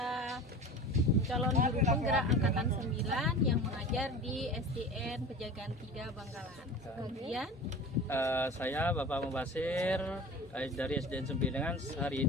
calon guru penggerak angkatan 9 yang mengajar di SDN Pejagaan 3 Bangkalan. Kemudian saya Bapak Mubasir dari SDN Sembilan. Hari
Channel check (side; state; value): both; normal; correlation 0.34